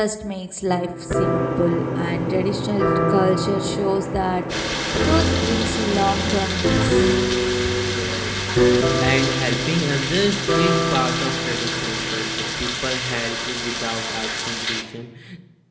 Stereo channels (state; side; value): identical; both; correlation 1.00